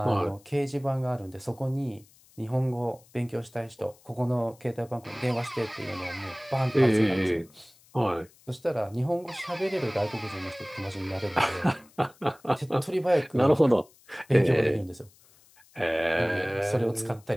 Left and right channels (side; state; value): left; noise; hiss, 28 dB below the sound